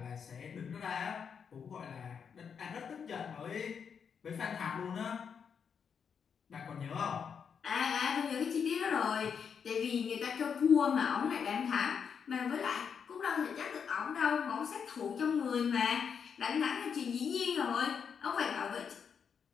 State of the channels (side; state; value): right; quieter; 6.8 dB